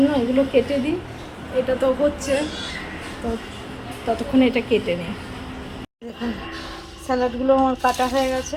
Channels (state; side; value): identical; both; correlation 1.00